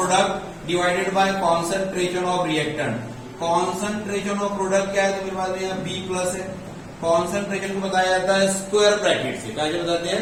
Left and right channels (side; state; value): both; identical; correlation 1.00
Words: divided by concentration of reactant. Concentration of product क्या है? तो मेरे पास में यहाँ बी प्लस है। कॉन्सेंट्रेशन को बताया जाता है स्क्वायर ब्रैकेट से। क्या बताते हैं?